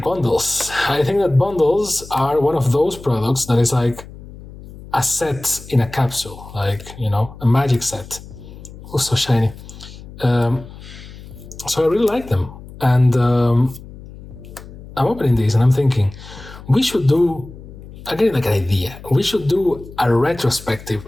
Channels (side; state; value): left; noise; hum, 16 dB below the sound